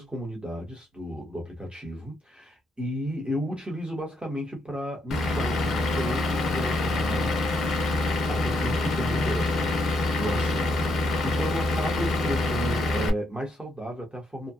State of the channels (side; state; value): both; normal; correlation 0.77